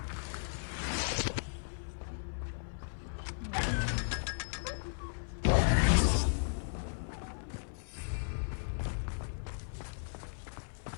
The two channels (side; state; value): right; silent; 54 dB below the other